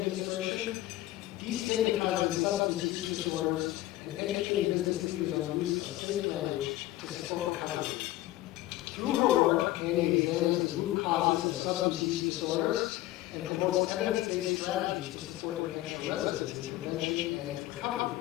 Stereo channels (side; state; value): right; quieter; 16.0 dB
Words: destigmatizing substance use disorders, and educating business leaders on the use of safe language to support recovery. Through her work, Annie examines the root causes of substance use disorders and promotes evidence-based strategies to support New Hampshire residents in prevention and recovery.